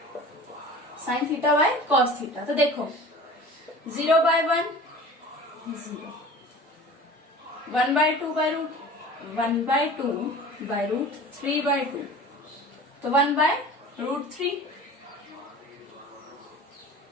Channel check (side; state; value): both; normal; correlation 0.40